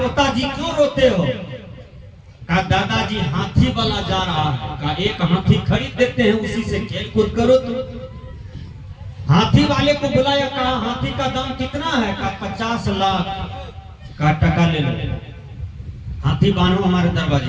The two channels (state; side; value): identical; both; correlation 1.00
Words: क्यों रोते हो? कहा दादाजी हाथी वाला जा रहा है। कहा एक हाथी खरीद देते हैं, उसी से खेल कूद करो तुम। हाथी वाले को बुलाया, कहा हाथी का दाम कितना है? कहा 50 लाख का टका ले लो, हाथी बांधो हमारे